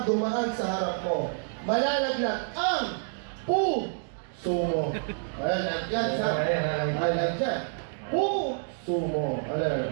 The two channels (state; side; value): silent; left; digital silence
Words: dumaan sa harap mo, malalaglag ang puso mo. Malalagyan sa malalagyan. Puso mo.